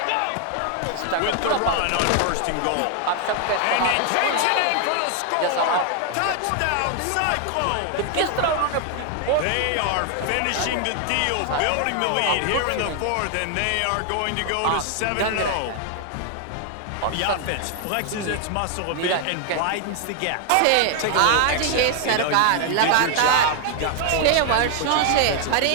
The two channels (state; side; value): different; both; correlation 0.00